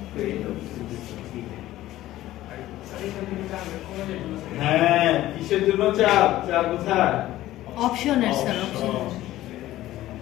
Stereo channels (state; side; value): quieter; right; 15.0 dB